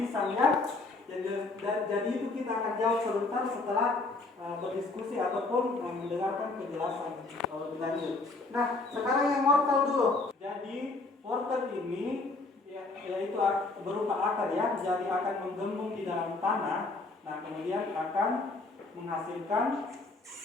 ya? Jadi itu kita akan jawab sebentar setelah berdiskusi ataupun mendengarkan penjelasan lebih lanjut. Nah, sekarang yang wortel dulu. Jadi wortel ini yaitu berupa akar ya, jadi akan menggembung di dalam tanah. Nah, kemudian akan menghasilkan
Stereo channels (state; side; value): quieter; right; 3.4 dB